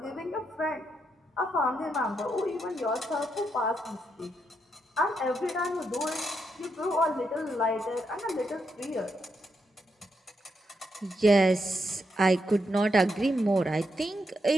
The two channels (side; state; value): both; normal; correlation 0.81